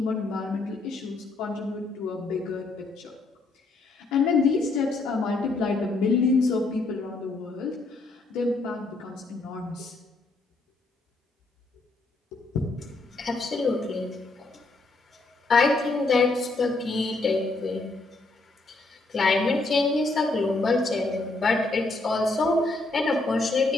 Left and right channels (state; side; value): quieter; right; 3.3 dB